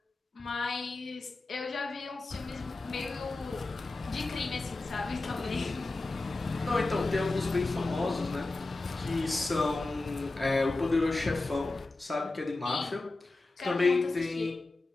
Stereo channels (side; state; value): right; quieter; 3.2 dB